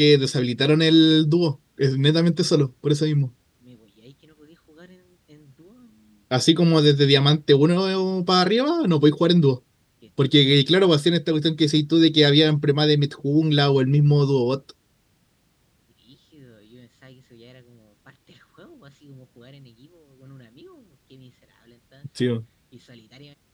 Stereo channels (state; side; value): identical; both; correlation 1.00